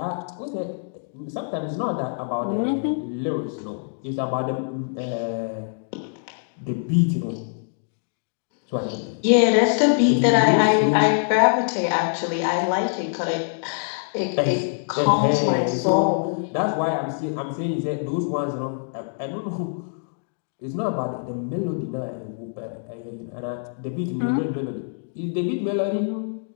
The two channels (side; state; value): right; silent; digital silence